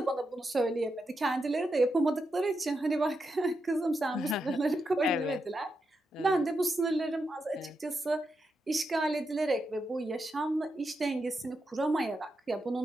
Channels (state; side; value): normal; both; correlation 0.85